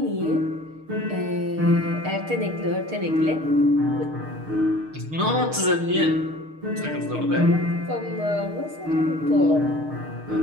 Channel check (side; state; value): left; late; 6.5 ms